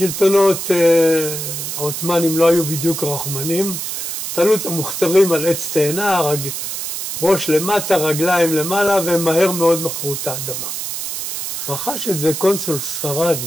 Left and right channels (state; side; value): noise; right; hiss, 5 dB below the sound